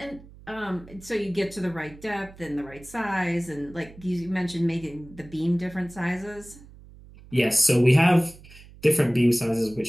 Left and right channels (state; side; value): noise; right; hum, 21 dB below the sound